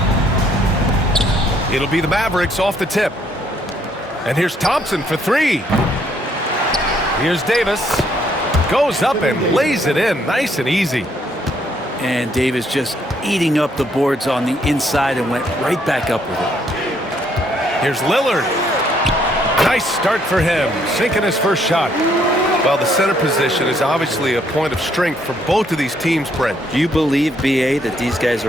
It'll be the Mavericks off the tip. And here's Thompson for three. Here's Davis. Goes up and lays it in nice and easy. And Davis just eating up the boards on the inside and went right back up with it. Here's Lillard. Nice start for him, sinking his first shot. Well, the center position is obviously a point of strength for both of these teams, Brent. Do you believe, B.A., that these guys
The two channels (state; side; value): normal; both; correlation 0.69